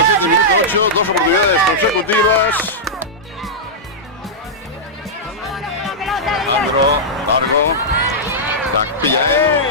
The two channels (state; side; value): normal; both; correlation -0.10